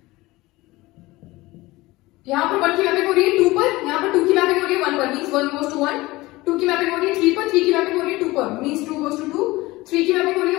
यहाँ पर 1 की मैपिंग हो रही है 2 पर, यहाँ पर 2 की मैपिंग हो रही है 1 पर, मींस 1 goes to 1, 2 की मैपिंग हो रही है 3 पर, 3 की मैपिंग हो रही है 2 पर, मींस 2 goes to 2, 3 की मैपिंग हो रही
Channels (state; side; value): quieter; right; 20.1 dB